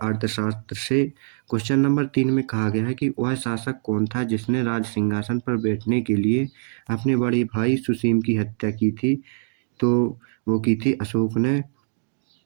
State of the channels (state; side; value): silent; left; 63 dB below the other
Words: से। क्वेश्चन नंबर 3 में कहा गया है कि वह शासक कौन था जिसने राज सिंहासन पर बैठने के लिए अपने बड़े भाई सुसीम की हत्या की थी, तो वो की थी अशोक ने।